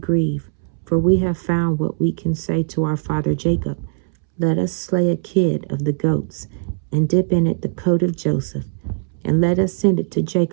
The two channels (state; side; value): silent; left; 66 dB below the other